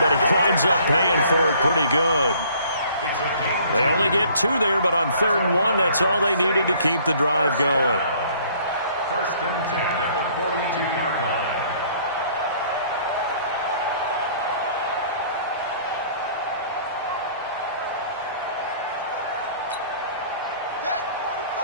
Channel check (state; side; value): inverted; both; correlation -0.57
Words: he winds up paying for it pretty good. They only get 2 there, but on 3rd and 1, that's all they needed to keep the drive going. 1st and 10 at the 42-yard line.